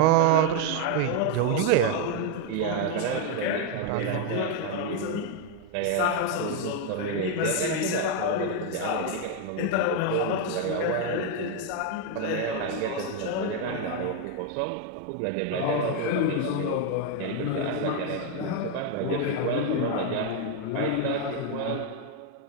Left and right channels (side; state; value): both; different; correlation 0.01